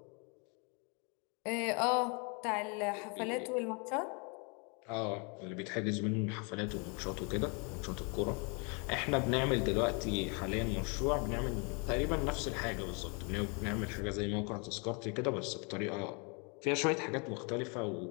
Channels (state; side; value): quieter; right; 34.1 dB